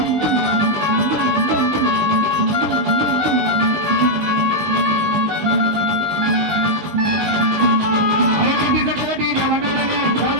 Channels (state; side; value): late; left; 19 ms